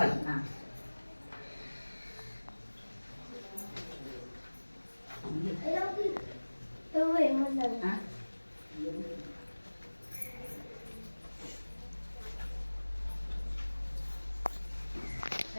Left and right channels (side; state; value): both; inverted; correlation -1.00